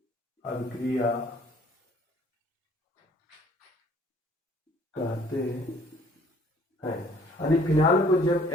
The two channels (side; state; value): both; normal; correlation 0.58